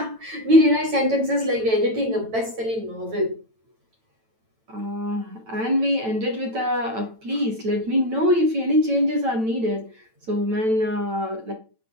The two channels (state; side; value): late; left; 9.0 ms